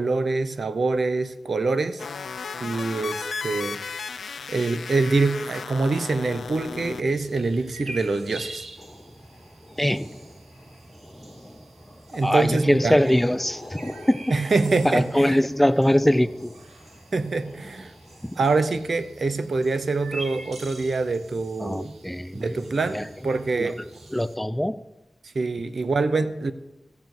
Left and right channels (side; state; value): both; normal; correlation 0.94